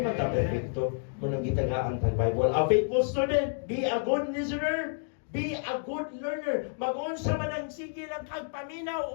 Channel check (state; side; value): silent; right; digital silence